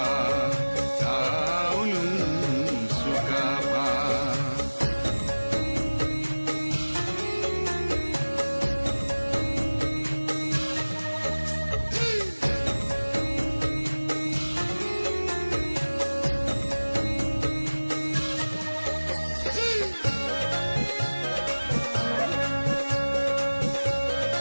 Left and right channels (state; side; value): inverted; both; correlation -1.00